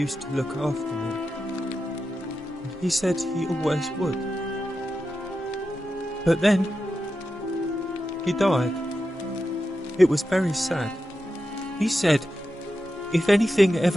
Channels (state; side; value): normal; both; correlation 0.90